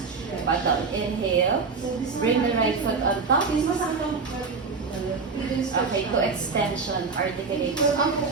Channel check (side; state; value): left; quieter; 4.7 dB